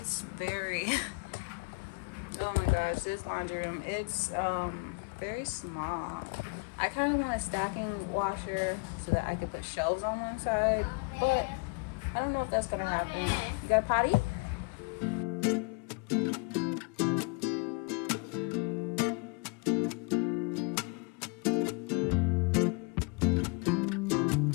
very... Oh my gosh, this laundry room, it's very small. I kind of want a stacking washer so that I could put shelves on one side, but I don't know if that's gonna happen. You got a potty?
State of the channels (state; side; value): quieter; right; 31.6 dB